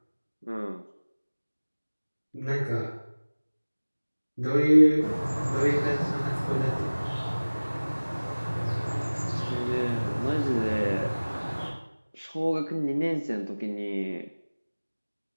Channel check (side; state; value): both; inverted; correlation -1.00